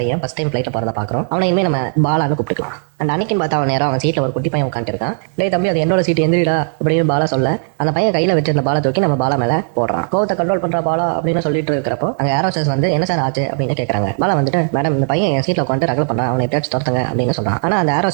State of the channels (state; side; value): silent; left; digital silence